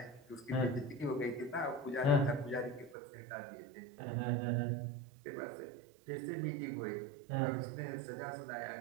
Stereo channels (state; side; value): drops out; left; at 3.0 s